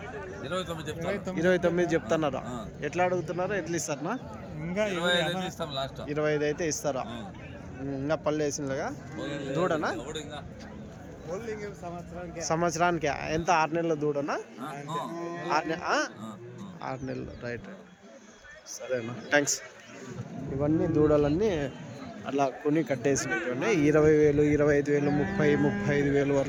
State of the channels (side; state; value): both; identical; correlation 1.00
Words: 29 చెప్తున్నారా? ఎట్లా అడుగుతున్నారా? ఎట్లా ఇస్తారా? 25 అయితే ఇస్తారా? ఇంకా పళ్ళు వేసిందిగా దూడనా? సంవత్సరానికి ఎంత? 6 నెలల దూడనా? 6 నెలలు. రైట్, సరేనా, థ్యాంక్స్. ఇవన్నీ దూడలన్నీ అలా కొని కట్టేసినటువంటి 20,000, 25,000, 35,000